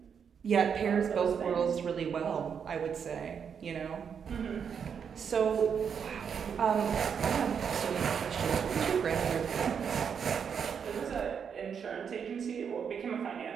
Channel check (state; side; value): quieter; left; 7.1 dB